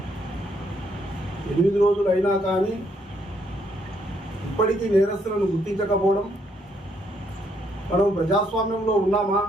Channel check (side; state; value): both; normal; correlation 0.72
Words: 8 రోజులు అయినా కానీ ఇప్పటికీ నేరస్తులను గుర్తించకపోవడం, మనం ప్రజాస్వామ్యంలో ఉన్నామా,